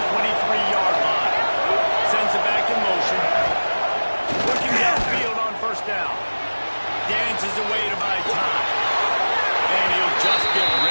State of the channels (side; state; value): both; inverted; correlation -1.00